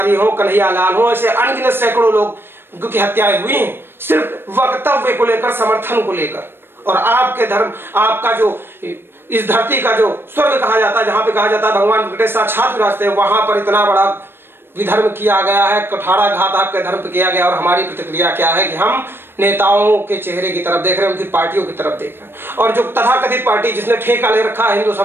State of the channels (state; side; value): late; left; 0.10 ms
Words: हो, कन्हैया लाल हो, ऐसे अनगिनत सैकड़ों लोग की हत्याएं हुई हैं, सिर्फ वक्तव्य को लेकर, समर्थन को लेकर। और आपके धर्म, आपका जो इस धरती का जो स्वर्ग कहा जाता है, जहां पे कहा जाता है भगवान वेंकटेश साक्षात विराजते हैं, वहां पर इतना बड़ा विधर्म किया गया है, कुठाराघात आपके धर्म पे किया गया। और हमारी प्रतिक्रिया क्या है कि हम नेताओं के चेहरे की तरफ देख रहे हैं, उनकी पार्टियों की तरफ देख रहे हैं। और जो तथाकथित पार्टी जिसने ठेका ले रखा है हिंदू